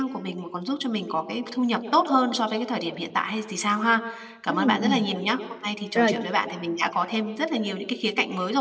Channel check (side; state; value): both; identical; correlation 1.00